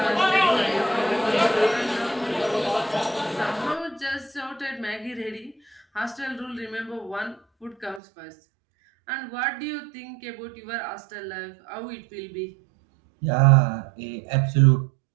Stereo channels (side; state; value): left; drops out; at 8.0 s